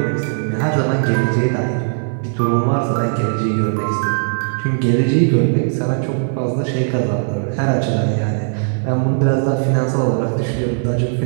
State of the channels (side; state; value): left; silent; 58 dB below the other